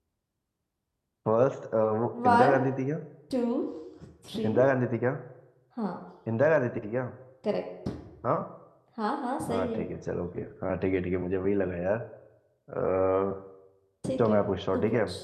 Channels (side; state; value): both; identical; correlation 1.00